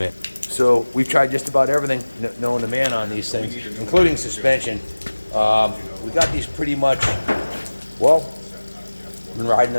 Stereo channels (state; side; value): inverted; both; correlation -1.00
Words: So we've tried just about everything known to man on these things, including suspension. We got these pretty much, well, been riding